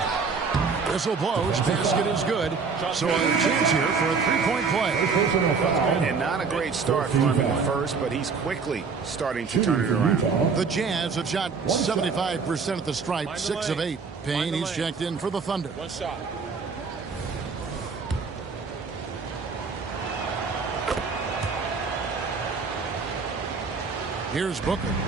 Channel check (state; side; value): quieter; left; 5.1 dB